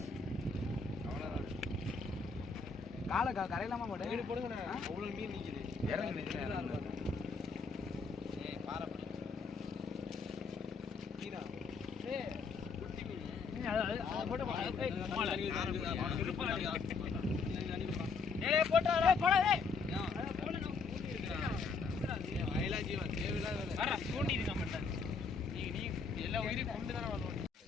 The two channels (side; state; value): right; quieter; 4.8 dB